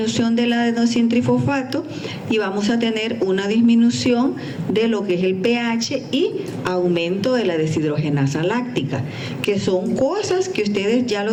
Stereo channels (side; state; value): both; identical; correlation 1.00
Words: del adenosintrifosfato y vamos a tener una disminución de lo que es el pH y aumento de la deshidrogenasa láctica, que son cosas que ustedes ya